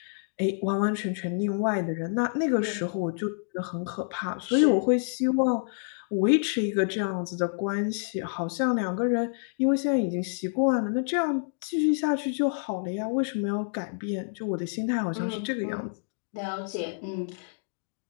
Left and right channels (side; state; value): right; silent; digital silence